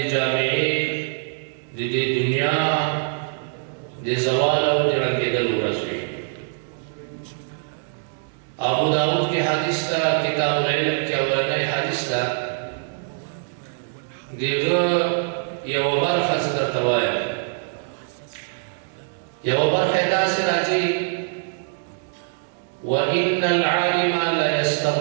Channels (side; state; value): left; silent; digital silence